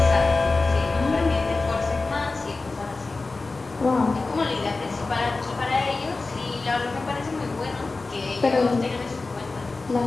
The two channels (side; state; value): right; quieter; 3.6 dB